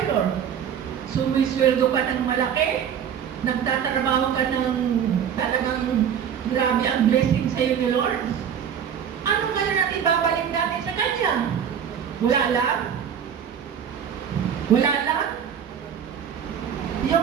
Lord? Sumisweldo ka ng malaki? Nagtatrabaho ka ng talagang grabe ang blessing sa iyo ni Lord? Ano nga na ibabalik natin sa Kanya? Wala lang? Wala lang? Yung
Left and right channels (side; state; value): left; quieter; 8.4 dB